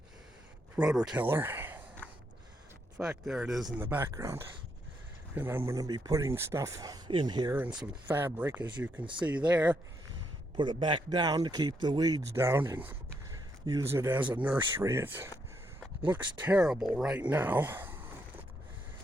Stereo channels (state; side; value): normal; both; correlation 0.77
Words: rototiller. In fact, there it is in the background. And I'm going to be putting stuff in here and some fabric, as you can see there. Put it back down to keep the weeds down and use it as a nursery. It looks terrible right now.